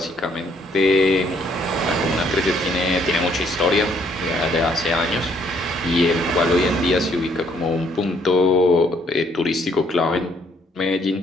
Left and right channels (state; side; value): normal; both; correlation 0.67